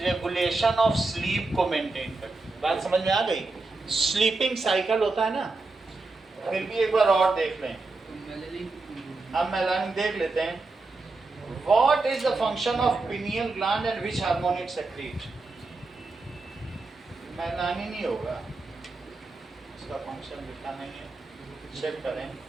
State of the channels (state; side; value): quieter; left; 3.5 dB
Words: ऑफ स्लीप को मेंटेन करती है। बात समझ में आ गई? स्लीपिंग साइकिल होता है ना, फिर भी एक बार और देख लें। तो मेलानिन, हम मेलानिन देख लेते हैं। What is the function of pineal gland and which hormone it secrete? Melanin ही होगा, इसका फंक्शन लिखा नहीं है, चेक करें।